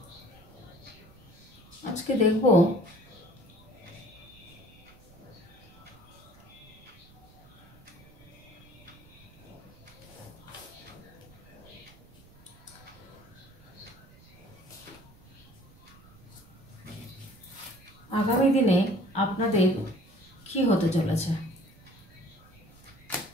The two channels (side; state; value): right; noise; rumble, 24 dB below the sound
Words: আজকে দেখব আগামী দিনে আপনাদের কি হতে চলেছে।